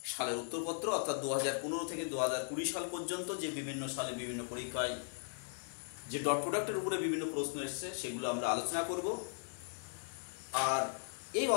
সালের উত্তরপত্র, অর্থাৎ 2015 থেকে 2020 সাল পর্যন্ত যে বিভিন্ন সালে বিভিন্ন পরীক্ষায় যে ডট প্রোডাক্টের উপরে বিভিন্ন প্রশ্ন এসছে সেগুলো আমরা আলোচনা করব। আর এই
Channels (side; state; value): right; silent; digital silence